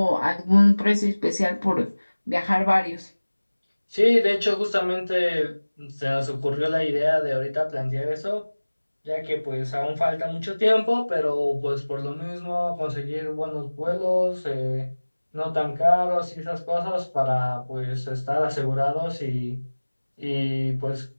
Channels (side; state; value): both; inverted; correlation -1.00